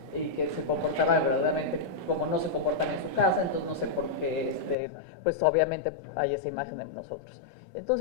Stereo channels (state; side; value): drops out; right; at 4.8 s